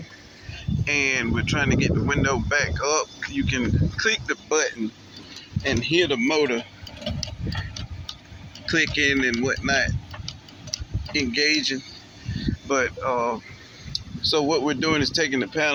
and we're trying to get the window back up. You can click the button and hear the motor clicking and whatnot, engaging. But so what we're doing is taking the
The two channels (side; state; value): both; identical; correlation 1.00